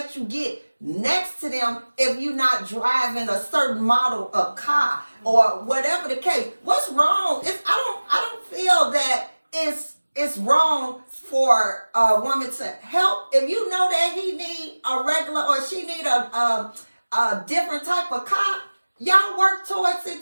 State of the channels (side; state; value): both; inverted; correlation -1.00